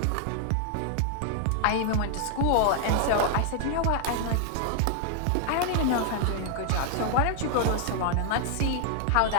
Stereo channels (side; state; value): both; different; correlation 0.00